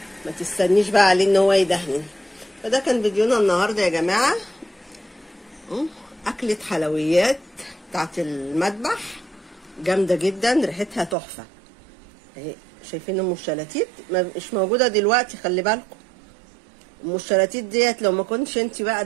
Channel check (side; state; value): left; drops out; at 11.2 s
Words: ما تستنيش بقى عليه ان هو يدهن. فده كان فيديونا النهارده يا جماعه، اكله حلويات بتاعت المذبح جامده جدا، ريحتها تحفه اهي. شايفين ام الشلاتيت مش موجوده دلوقتي، خلي بالكم. ام الشلاتيت ديت لو ما كنتش انت بقى